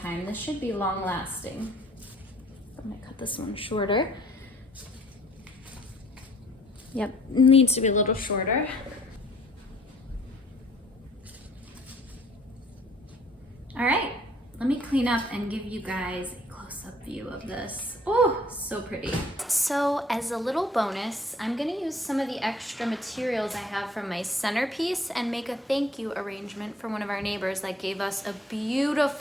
time. This should be long lasting. I'm gonna cut this one shorter. Yep, needs to be a little shorter. All right, let me clean up and give you guys a close-up view of this. Oh, so pretty. So as a little bonus, I'm gonna use some of the extra materials I have from my centerpiece and make a thank you arrangement for one of our neighbors that gave us a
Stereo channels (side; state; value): both; normal; correlation 0.57